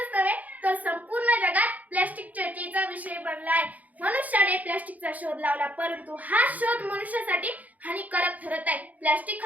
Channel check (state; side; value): late; left; 0.077 ms